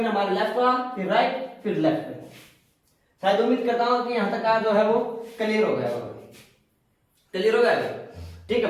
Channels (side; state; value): both; identical; correlation 1.00